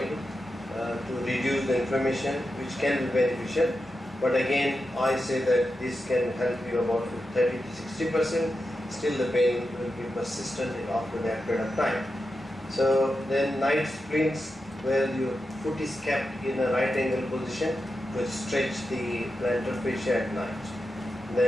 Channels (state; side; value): normal; both; correlation 0.89